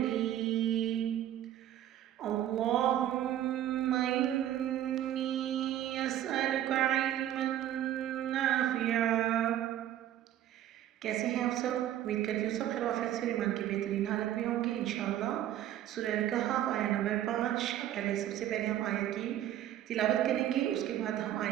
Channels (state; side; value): quieter; left; 12.0 dB